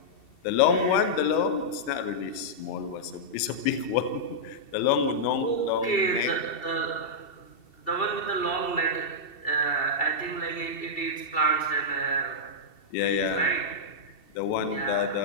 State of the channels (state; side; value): late; right; 2.7 ms